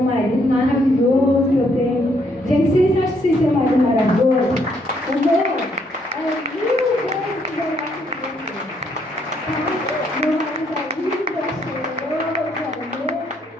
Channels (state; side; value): normal; both; correlation 0.71